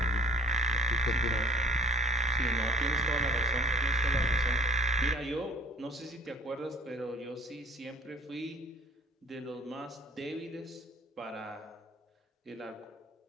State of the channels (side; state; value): both; normal; correlation 0.49